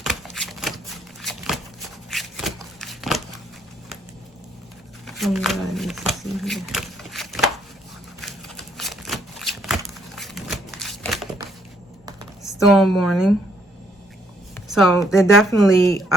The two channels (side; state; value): both; normal; correlation 0.70